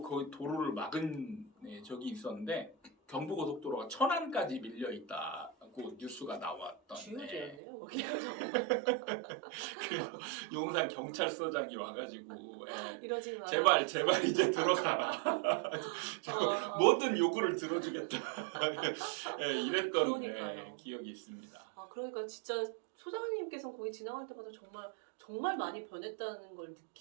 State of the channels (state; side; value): drops out; left; at 7.6 s